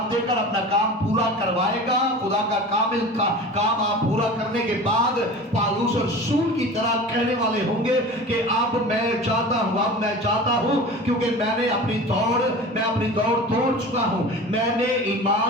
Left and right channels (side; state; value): both; normal; correlation 0.36